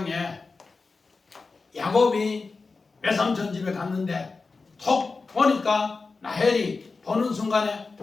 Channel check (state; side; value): quieter; right; 4.1 dB